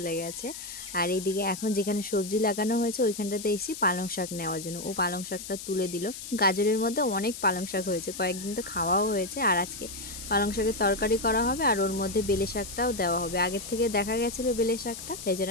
গেছে। আর এইদিকে এখন যেখানে সবজি লাগানো হয়েছে ওইখানটাতে এসেছি পালং শাক নেওয়ার জন্য। ও পালং শাকটা তুলে দিল। গাজরের মধ্যে অনেক পালং শাক হয়েছে, কয়েকদিন তো খাওয়াও হয়েছে। আর আজকে পালং শাকের তরকারি করা হবে আর ওর মধ্যে বেলে শাকটাও দেওয়া হবে। আগের থেকে দেখা গেছিলো বেলে শাকটা, তাই জন্য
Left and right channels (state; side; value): noise; left; hiss, 10 dB below the sound